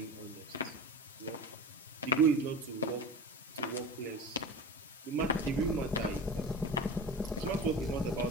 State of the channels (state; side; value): normal; both; correlation 0.31